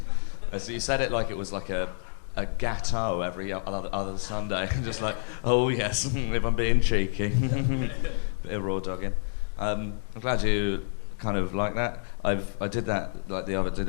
So you said it like it was like a gâteau every other Sunday. Just like, oh yes, if I'm being cheeky. Bit of raw dogging. I'm glad you kind of like that. I did that like did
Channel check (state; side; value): silent; right; digital silence